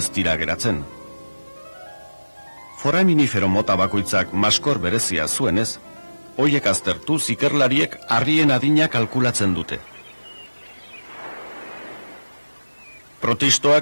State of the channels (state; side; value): inverted; both; correlation -1.00